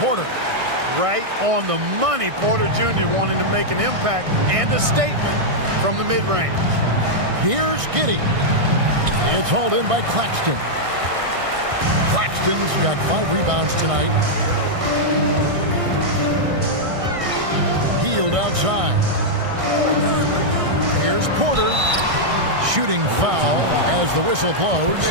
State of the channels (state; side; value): late; left; 1.6 ms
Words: Right on the money. Porter Jr. wanting to make an impact and a statement from the mid-range. Here's Giddey. It's hauled in by Claxton. Claxton's got 5 rebounds tonight. Healed outside. Here's Porter. Shooting foul as the whistle blows.